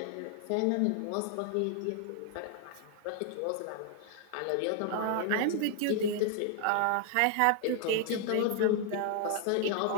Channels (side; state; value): both; different; correlation 0.00